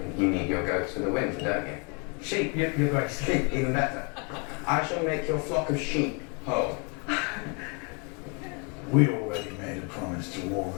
You need your goats for the winter, don't you? Sheep, your Grace. Sheep, even better. I shall make your flock of sheep whole. We already made a promise to all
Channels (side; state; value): right; quieter; 34.4 dB